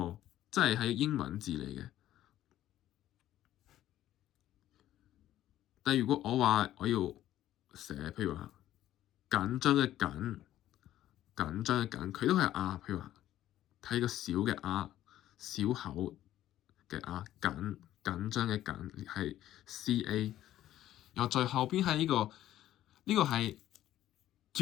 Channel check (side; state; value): right; quieter; 13.1 dB